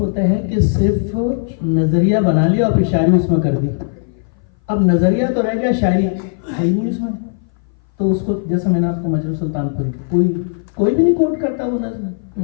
ہے کہ صرف نظریہ بنا لیا اور پھر شاعری اس میں کر دی. اب نظریہ تو رہ گیا, شاعری ہے ہی نہیں اس میں. تو اس کو جیسے میں نے آپ کو مجروح سلطان پور کوئی بھی نہیں کوٹ کرتا وہ نظم,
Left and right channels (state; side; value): silent; right; 59 dB below the other